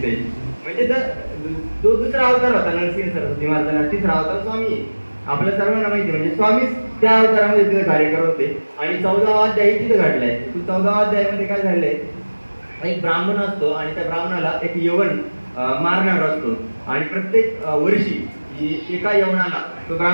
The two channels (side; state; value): both; inverted; correlation -1.00